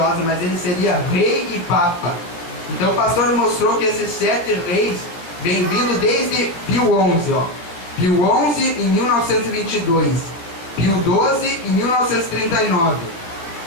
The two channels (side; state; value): right; late; 17 ms